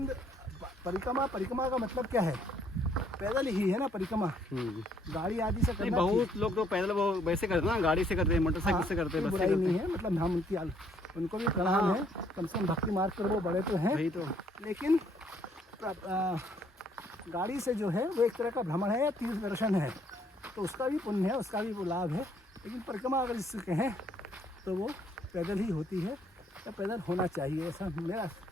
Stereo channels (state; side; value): normal; both; correlation 0.66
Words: परिक्रमा का मतलब क्या है? पैदल ही है ना परिक्रमा, गाड़ी आदि से नहीं, करना बहुत लोग तो पैदल वो वैसे करते हैं ना, गाड़ी से करते हैं, मोटरसाइकिल से करते हैं, कोई बस से बुराई करते नहीं हैं। है, मतलब हम उनको भी प्रणाम है, कम से कम भक्ति मार्ग पर वो बड़े तो हैं, वही तो। लेकिन गाड़ी से जो है वो एक तरह का भ्रमण है या तीर्थ दर्शन है, तो उसका भी पुण्य है, उसका भी वो लाभ है। लेकिन परिक्रमा अगर जिससे कहें तो वो पैदल ही होती है या पैदल होना चाहिए, ऐसा मेरा